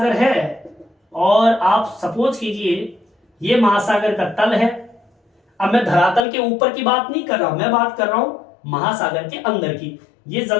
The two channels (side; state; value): right; drops out; at 6.2 s